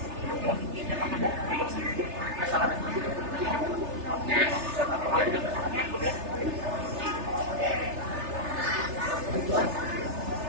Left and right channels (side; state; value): left; late; 3.3 ms